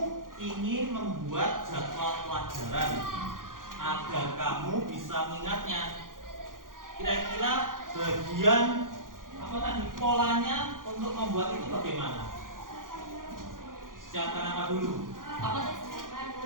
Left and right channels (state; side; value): late; left; 0.90 ms